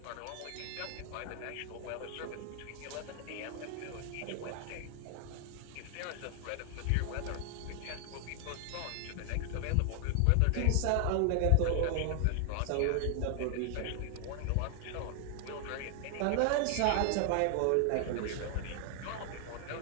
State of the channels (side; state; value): both; different; correlation 0.00